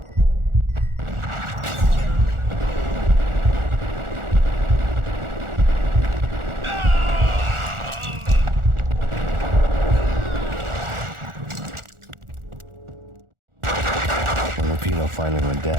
Lupino finally went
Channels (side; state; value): left; late; 1.4 ms